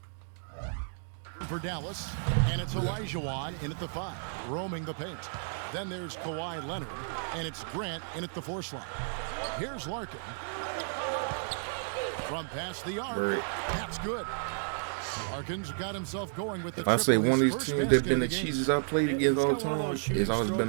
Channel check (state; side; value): silent; left; digital silence